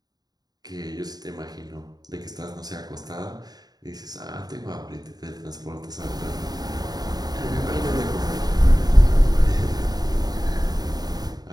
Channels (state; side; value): late; left; 0.19 ms